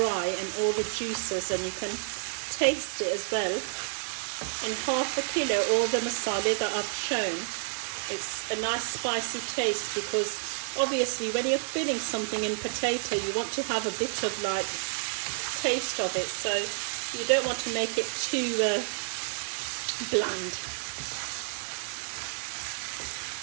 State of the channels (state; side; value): silent; left; digital silence